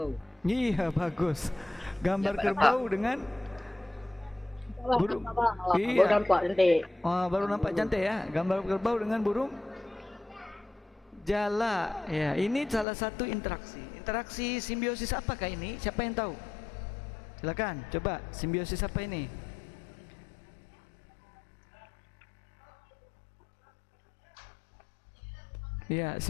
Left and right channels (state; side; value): drops out; right; at 12.9 s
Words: Iya, bagus. Gambar kerbau dengan burung. Iya. Nampak nanti. Oh, baru nampak cantik ya. Gambar kerbau dengan burung jala. Ya, ini salah satu interaksi. Interaksi simbiosis apakah ini? Siapa yang tahu? Silakan, coba simbiosis apa ini? Ya,